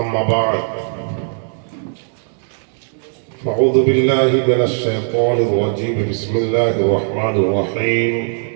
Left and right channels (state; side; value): silent; left; digital silence